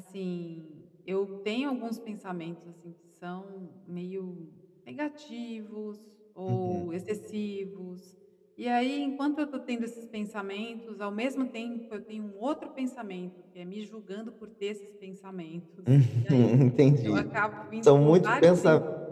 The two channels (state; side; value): identical; both; correlation 1.00